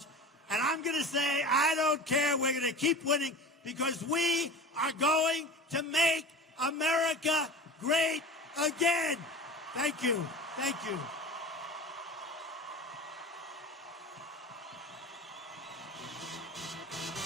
And I'm going to say, I don't care. We're going to keep winning because we are going to make America great again. Thank you. Thank you.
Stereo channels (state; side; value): normal; both; correlation 0.34